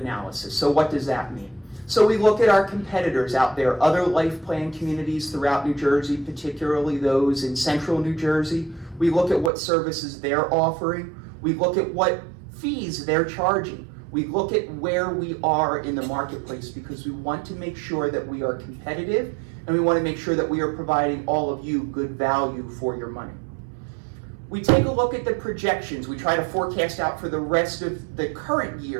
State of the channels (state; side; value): drops out; left; at 9.5 s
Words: So what does that mean? So we look at our competitors out there, other life plan communities throughout New Jersey, particularly those in central New Jersey. We look at what services they're offering. We look at what fees they're charging. We look at where we are in the marketplace, because we want to make sure that we are competitive, and we want to make sure that we are providing all of you good value for your money. We take a look at the projections. We try to forecast out for the rest of the current